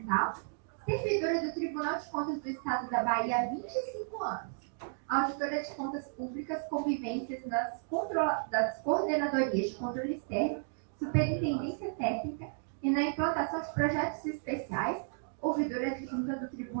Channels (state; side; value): silent; left; digital silence